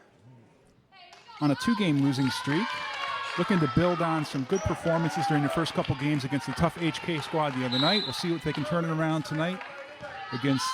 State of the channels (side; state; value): both; identical; correlation 1.00